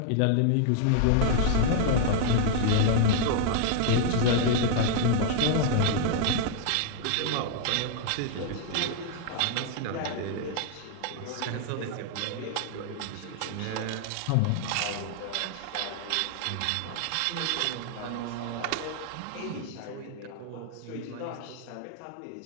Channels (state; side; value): different; both; correlation 0.00